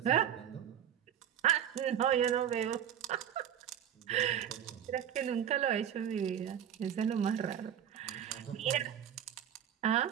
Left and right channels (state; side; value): quieter; left; 9.6 dB